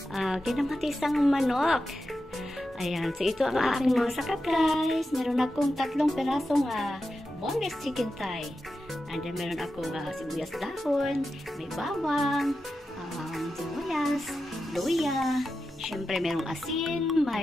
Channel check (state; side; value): normal; both; correlation 0.90